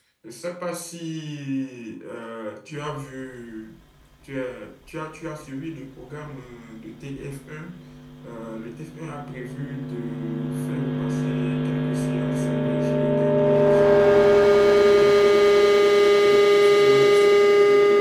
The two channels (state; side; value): identical; both; correlation 1.00